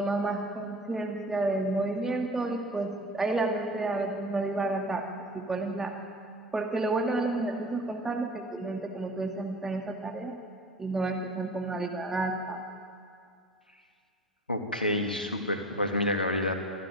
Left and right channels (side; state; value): both; normal; correlation 0.41